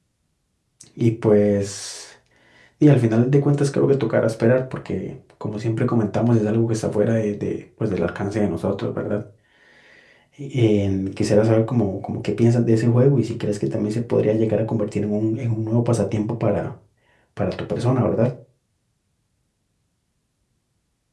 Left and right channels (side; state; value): both; identical; correlation 1.00